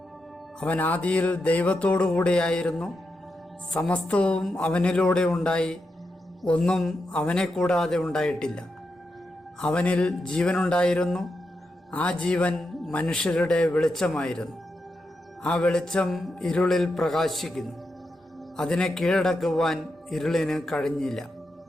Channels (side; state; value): both; normal; correlation 0.86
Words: അവൻ ആദിയിൽ ദൈവത്തോടു കൂടിയായിരുന്നു. സമസ്തവും അവനിലൂടെ ഉണ്ടായി, ഒന്നും അവനെ കൂടാതെ ഉണ്ടായിട്ടില്ല. അവനിൽ ജീവനുണ്ടായിരുന്നു, ആ ജീവൻ മനുഷ്യരുടെ വെളിച്ചമായിരുന്നു. ആ വെളിച്ചം ഇരുളിൽ പ്രകാശിക്കുന്നു, അതിനെ കീഴടക്കുവാൻ ഇരുളിന് കഴിഞ്ഞില്ല.